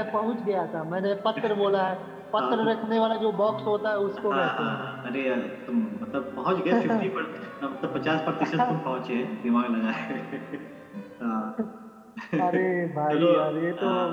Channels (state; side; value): identical; both; correlation 1.00